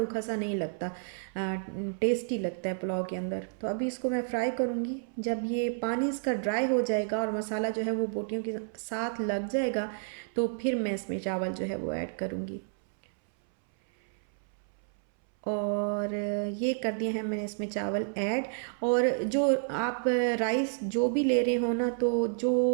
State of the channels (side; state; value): left; silent; 58 dB below the other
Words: सा नहीं लगता, टेस्टी लगता है पुलाव के अंदर। तो अभी इसको मैं फ्राई करूँगी। जब ये पानी इसका ड्राई हो जाएगा और मसाला जो है वो बोटियों के साथ लग जाएगा, तो फिर मैं इसमें चावल जो है वो ऐड करूँगी। और ये कर दिए हैं मैंने इसमें चावल ऐड। और जो आप राइस जो भी ले रहे हो ना, तो